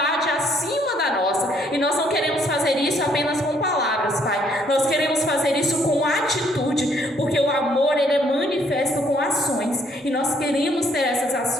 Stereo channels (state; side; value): normal; both; correlation 0.66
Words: acima da nossa. E nós não queremos fazer isso apenas com palavras, Pai. Nós queremos fazer isso com atitude, porque o amor, ele é manifesto com ações. E nós queremos ter essas